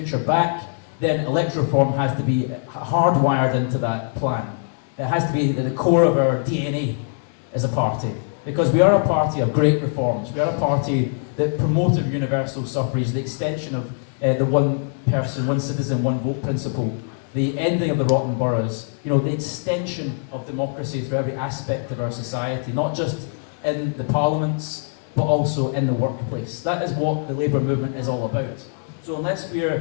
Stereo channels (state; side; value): silent; right; 64 dB below the other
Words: back, then electoral reform has to be hardwired into that plan. It has to be at the core of our DNA as a party. Because we are a party of great reforms. We are a party that promoted universal suffrage, the extension of the one person, one citizen, one vote principle, the ending of the rotten boroughs, the extension of democracy through every aspect of our society, not just in the parliaments, but also in the workplace. That is what the Labour movement is all about. So unless we